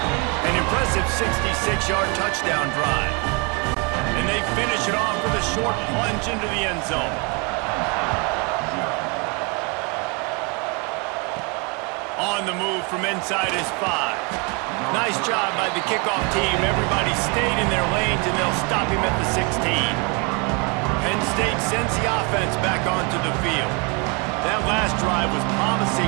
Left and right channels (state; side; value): quieter; left; 32.1 dB